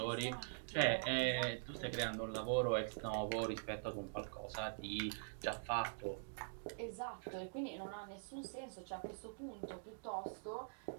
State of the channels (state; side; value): silent; left; digital silence